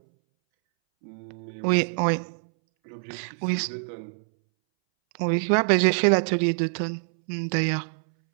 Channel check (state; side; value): silent; left; 62 dB below the other